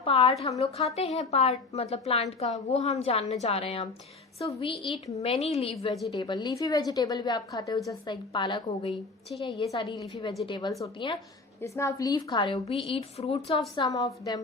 हम लोग खाते हैं, पार्ट मतलब प्लांट का, वो हम जानने जा रहे हैं अब। So we eat many leaf vegetable, leafy vegetable भी आप खाते हो, जस्ट लाइक पालक हो गई। ठीक है, ये सारी लीफी वेजिटेबल्स होती हैं जिसमें आप लीफ खा रहे हो। We eat fruits of some of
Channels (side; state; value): right; quieter; 3.9 dB